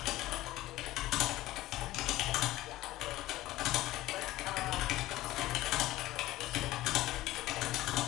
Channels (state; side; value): quieter; right; 16.5 dB